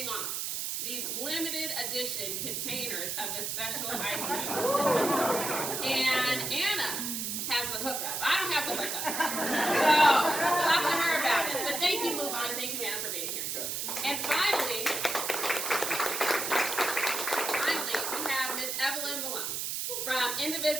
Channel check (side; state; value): right; noise; hiss, 2 dB below the sound